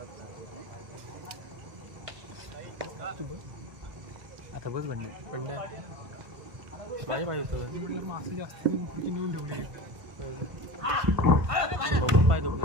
आता बस बंड माझ्या पाहिजे होतं मासे जास्त नेऊन ठेवली बघून पाय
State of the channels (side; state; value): left; late; 1.5 ms